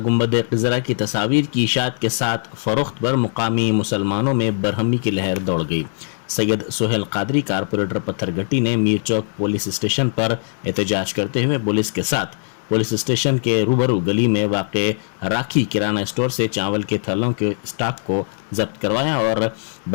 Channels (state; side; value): silent; right; digital silence